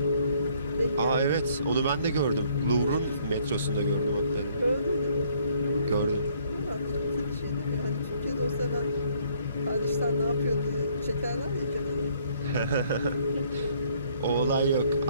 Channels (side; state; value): both; inverted; correlation -0.64